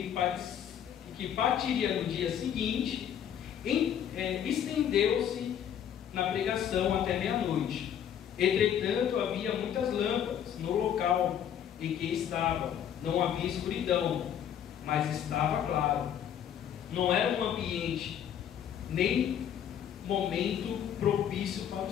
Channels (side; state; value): right; quieter; 9.4 dB